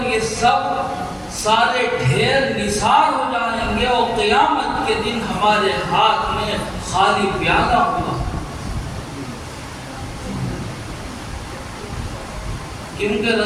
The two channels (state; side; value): identical; both; correlation 1.00